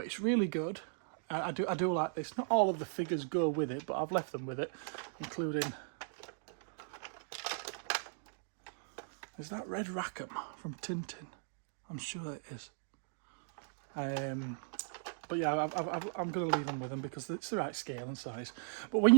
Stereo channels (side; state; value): left; silent; digital silence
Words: really good. I do like this. Not all of the figures go with it, but I've left them with it, including... Is that Red Rackham from Tintin? I'm sure it is. But yeah, I'm going to leave them with them because it's the right scale and size. But when